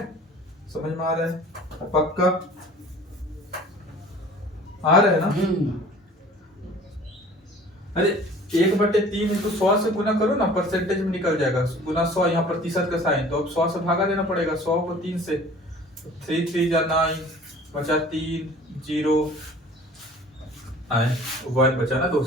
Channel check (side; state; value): both; normal; correlation 0.47